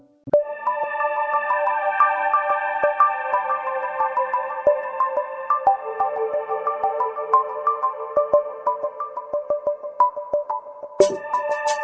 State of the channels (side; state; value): both; identical; correlation 1.00